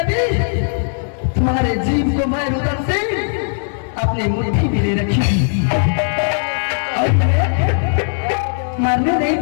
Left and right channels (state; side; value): silent; right; digital silence